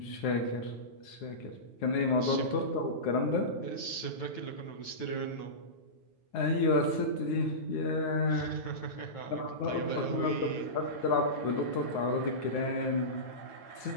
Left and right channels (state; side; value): late; right; 9.1 ms